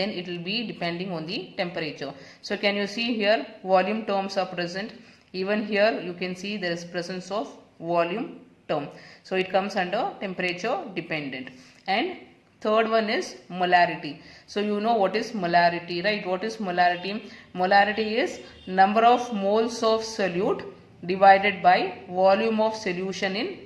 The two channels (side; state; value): both; identical; correlation 1.00